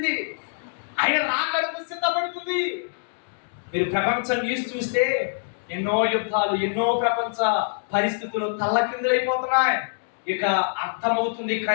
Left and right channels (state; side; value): silent; right; digital silence